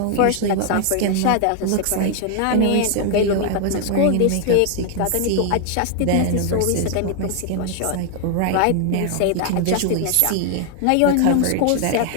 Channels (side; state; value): both; different; correlation 0.00